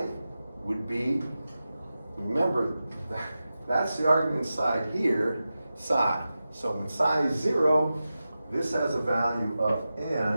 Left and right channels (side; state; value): both; inverted; correlation -0.93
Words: would be, remember, that's the argument side here, psi. So when psi is 0, this has a value of